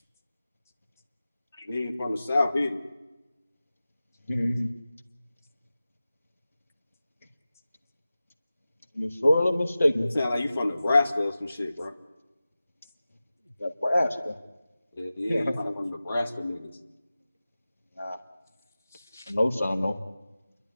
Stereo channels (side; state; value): both; inverted; correlation -0.96